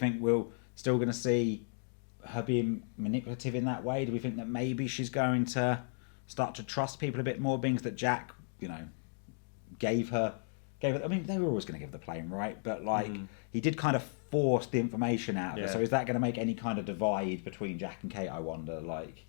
we're still going to see her being manipulative in that way? Do we think that maybe she's going to start to trust people a bit more, being that Jack, gave her gave it. I mean, they were always going to give the plane, right? But like, he did kind of force the information out of it. So is that going to make any kind of divide between Jack and Kate? I wonder. Like,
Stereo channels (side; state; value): right; silent; digital silence